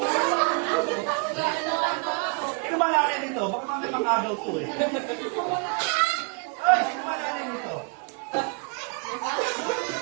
limang araw to eh. Ay, sino malalim ito?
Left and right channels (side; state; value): left; quieter; 34.8 dB